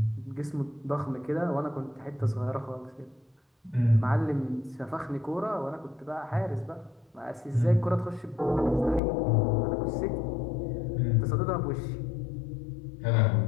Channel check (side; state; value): right; drops out; at 9.0 s